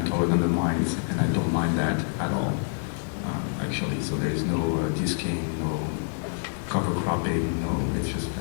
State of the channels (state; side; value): silent; right; digital silence